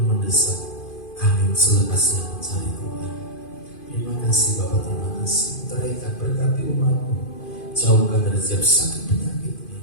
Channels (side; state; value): right; late; 2.5 ms